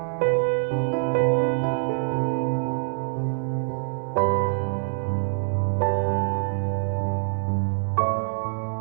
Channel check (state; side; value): silent; left; digital silence